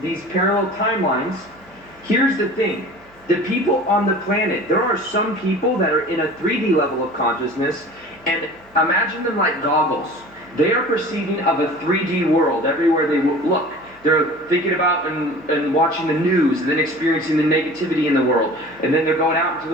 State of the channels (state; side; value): noise; right; hum, 30 dB below the sound